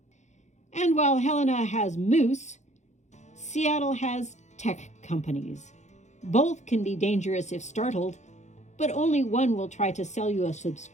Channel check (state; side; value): late; right; 0.34 ms